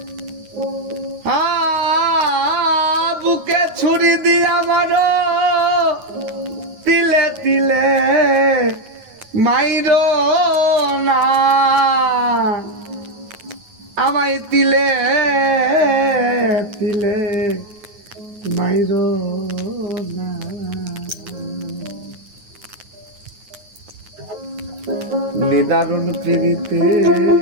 বুকে ছুরি দিয়া আমার দিলে দিলে মাইরো না আমায় তিলে তিলে মাইরো না নিদারুণ প্রীতি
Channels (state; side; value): late; left; 9.4 ms